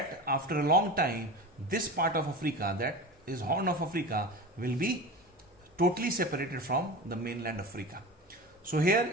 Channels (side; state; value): both; normal; correlation 0.30